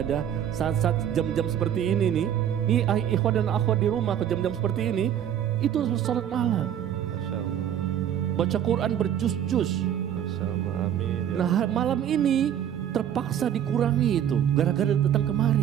saat-saat jam-jam seperti ini nih. Ini ikhwan dan akhwat di rumah ke jam-jam seperti ini, itu salat malam. Masya Allah. Baca Quran berjus-jus. Masya Allah, amin. Ya. Nah, malam ini terpaksa dikurangi itu gara-gara datang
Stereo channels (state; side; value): quieter; left; 9.9 dB